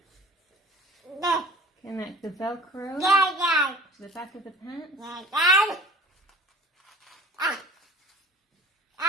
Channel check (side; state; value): both; normal; correlation 0.45